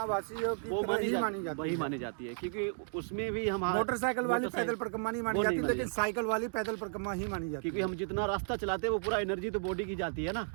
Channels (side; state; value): left; silent; digital silence